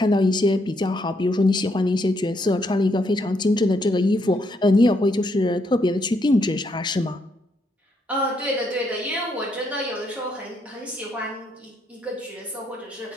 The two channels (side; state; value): both; normal; correlation 0.75